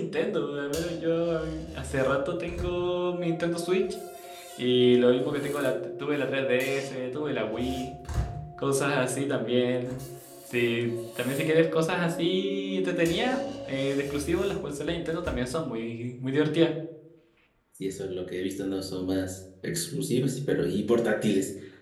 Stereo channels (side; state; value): both; identical; correlation 1.00